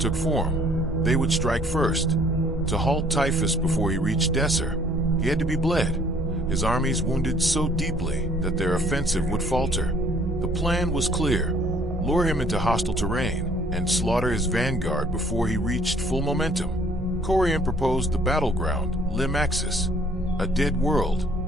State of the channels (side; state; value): both; normal; correlation 0.58